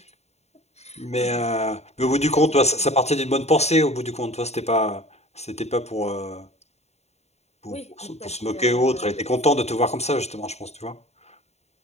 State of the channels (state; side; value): late; right; 0.31 ms